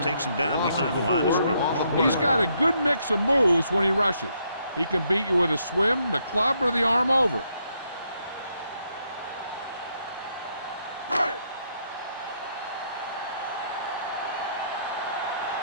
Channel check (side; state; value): both; inverted; correlation -0.74